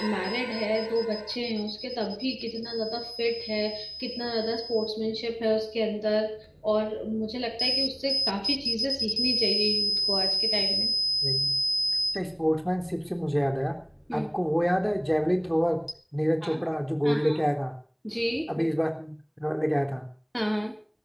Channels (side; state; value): both; identical; correlation 1.00